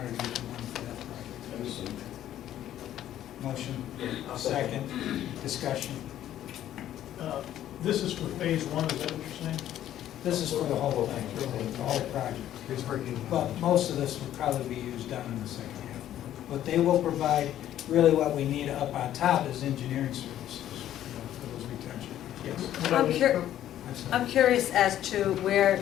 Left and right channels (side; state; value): right; quieter; 11.9 dB